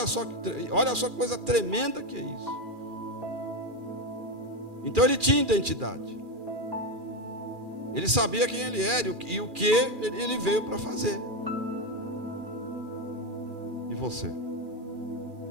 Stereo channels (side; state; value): left; late; 2.4 ms